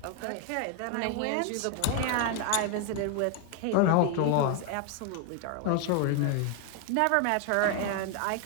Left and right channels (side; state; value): both; different; correlation 0.01